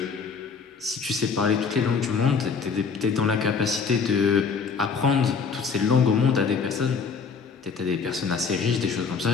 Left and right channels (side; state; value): right; quieter; 5.4 dB